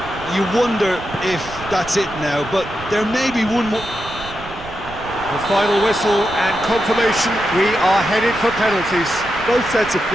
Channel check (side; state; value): right; noise; rumble, 15 dB below the sound